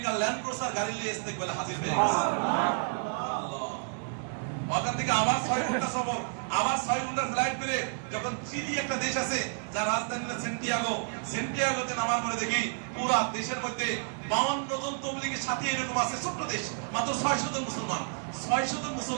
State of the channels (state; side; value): silent; left; digital silence